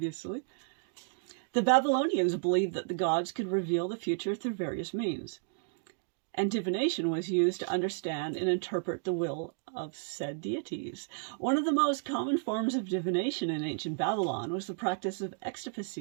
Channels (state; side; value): silent; left; digital silence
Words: The Babylonians believed that the gods could reveal the future through various means, and divination was used to understand and interpret the will of said deities. One of the most common forms of divination in ancient Babylon was the practice of